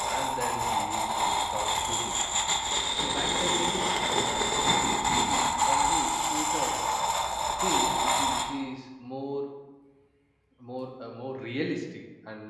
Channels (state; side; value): identical; both; correlation 1.00